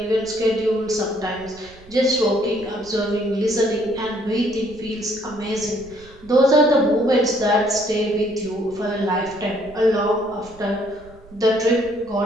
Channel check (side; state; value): right; noise; rumble, 22 dB below the sound